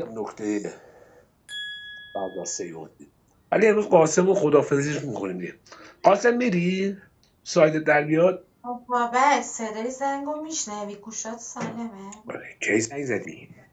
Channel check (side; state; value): both; identical; correlation 1.00